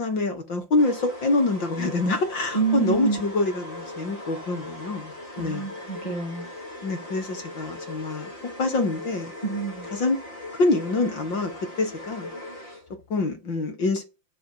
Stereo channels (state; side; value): late; right; 5.8 ms